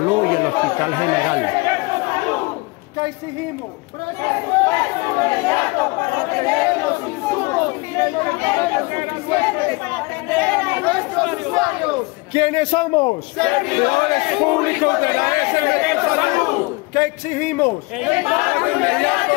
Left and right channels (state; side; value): quieter; right; 26.3 dB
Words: y el Hospital General. ¿Qué exigimos? Presupuesto inmediato para tener los insumos y los medicamentos suficientes para atender a nuestros usuarios. ¿Quiénes somos? Servidores públicos de la S Metrosalud. ¿Qué exigimos? El pago inmediato